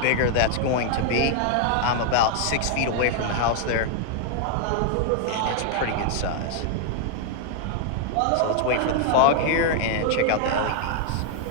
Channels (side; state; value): both; different; correlation 0.00